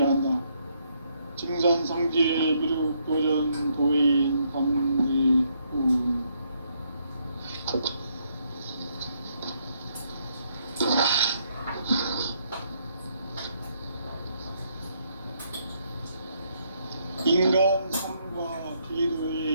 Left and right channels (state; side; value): inverted; both; correlation -0.73